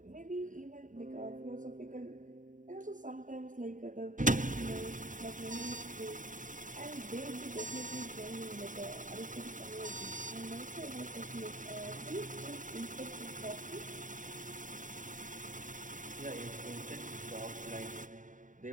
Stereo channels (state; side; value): late; left; 0.37 ms